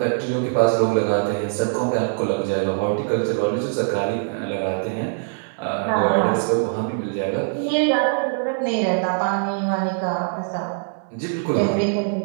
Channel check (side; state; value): left; silent; digital silence